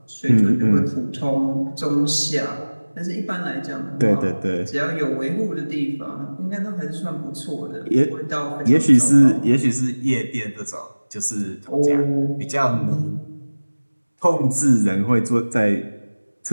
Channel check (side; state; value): both; inverted; correlation -1.00